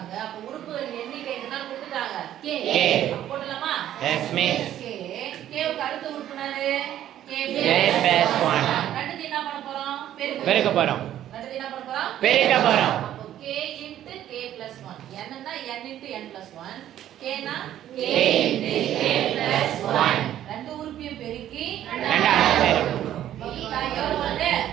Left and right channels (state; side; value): quieter; left; 11.8 dB